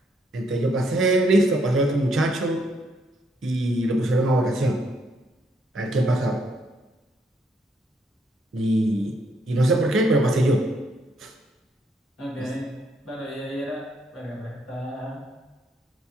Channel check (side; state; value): both; normal; correlation 0.72